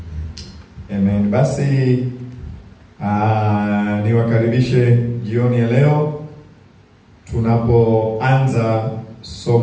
Amen. Basi niwakaribishe jioni ya leo tunapoanza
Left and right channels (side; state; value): both; identical; correlation 1.00